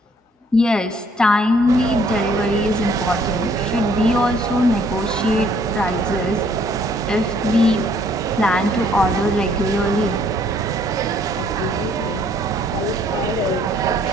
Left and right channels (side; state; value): both; normal; correlation 0.63